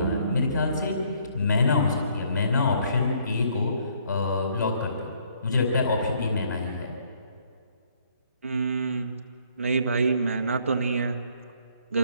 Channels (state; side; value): inverted; both; correlation -0.65